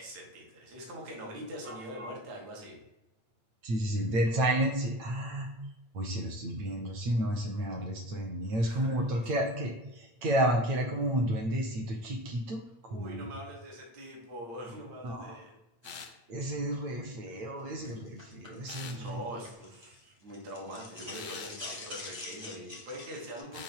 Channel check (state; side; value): late; left; 8.8 ms